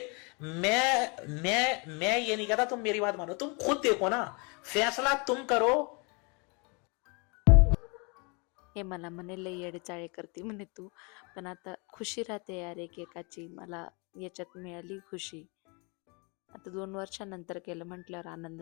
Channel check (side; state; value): right; quieter; 32.0 dB